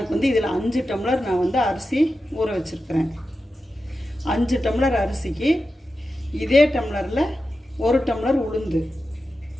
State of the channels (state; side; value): normal; both; correlation 0.91